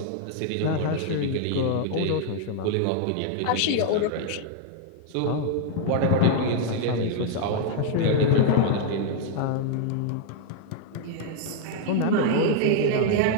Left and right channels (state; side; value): different; both; correlation 0.00